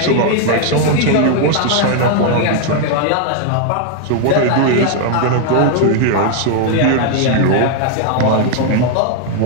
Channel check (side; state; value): both; different; correlation 0.00